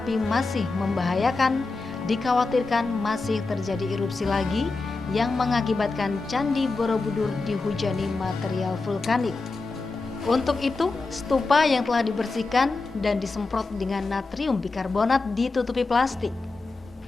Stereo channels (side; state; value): right; quieter; 3.6 dB